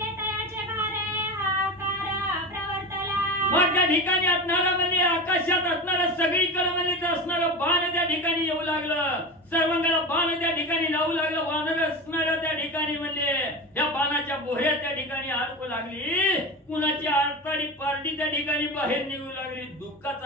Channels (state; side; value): normal; both; correlation 0.26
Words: तयाचे भारे हाकार प्रवर्तला. मग त्या ठिकाणी असणारा म्हणजे आकाशात असणारा सगळीकडे म्हणजे असणारं बाण त्या ठिकाणी येऊ लागलं, सर्वांगाला बाण त्या ठिकाणी लावू लागलं. वानर असणाऱ्या त्या ठिकाणी म्हणजे या बाणाच्या बोह्या त्या ठिकाणी अडकू लागली, कुणाची आरताडी पारडी त्या ठिकाणी बाहेर निघू लागली,